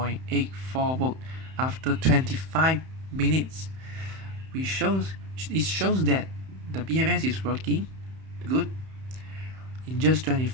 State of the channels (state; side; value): late; left; 31 ms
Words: volt after 25 minutes. It shows that the BMS is working good. In just